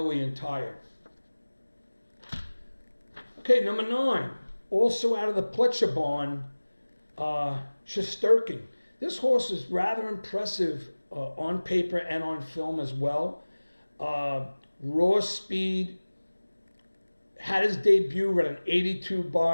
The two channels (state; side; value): inverted; both; correlation -1.00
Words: and tired. Okay, number 9, also out of the Pletcher barn, Shesterkin. This horse is rather impressive on paper and on film as well. Raw speed, had his debut at an 82